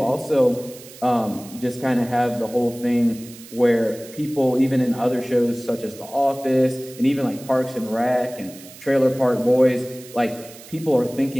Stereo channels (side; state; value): right; noise; hiss, 18 dB below the sound